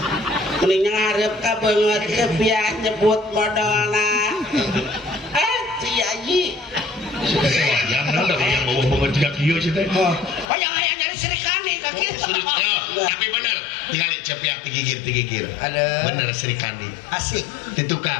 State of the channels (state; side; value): drops out; right; at 10.5 s